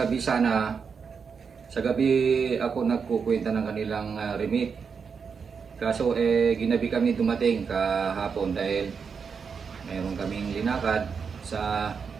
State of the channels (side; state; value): left; quieter; 6.0 dB